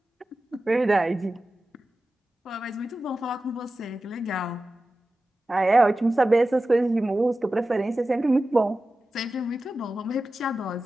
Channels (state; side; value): normal; both; correlation 0.94